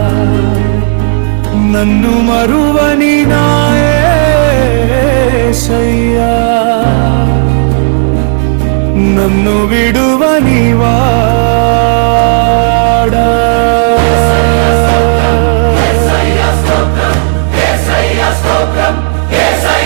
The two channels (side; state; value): left; silent; digital silence